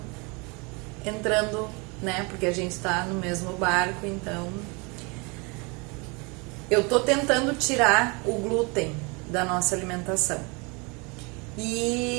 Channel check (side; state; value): left; quieter; 29.5 dB